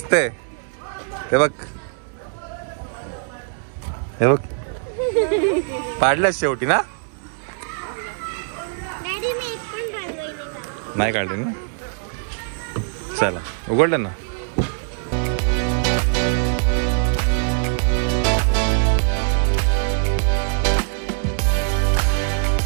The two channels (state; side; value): silent; left; digital silence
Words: ते बघ, हे बघ, पाडलंच शेवटी ना. नाही काढले ना. चला, उघडलं ना.